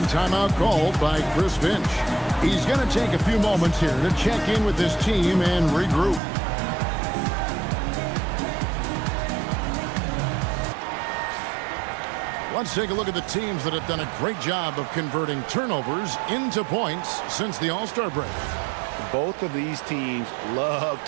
timeout called by Chris Finch. He's going to take a few moments here to check in with his team and regroup. Let's take a look at the teams that have done a great job of converting turnovers into points since the All-Star break. Both of these teams love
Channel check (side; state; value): left; drops out; at 6.2 s